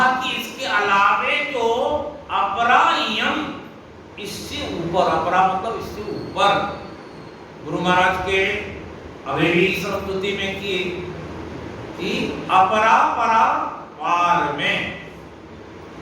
कि इसके अलावे जो अपरायम, इससे ऊपर, अपरा मतलब इससे ऊपर, गुरु महाराज के अभी स्तुति में की कि अपरा परा पार में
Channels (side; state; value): both; identical; correlation 1.00